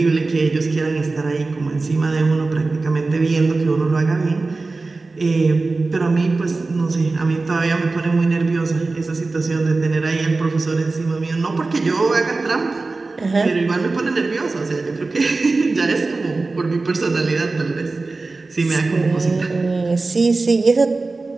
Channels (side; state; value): left; quieter; 3.6 dB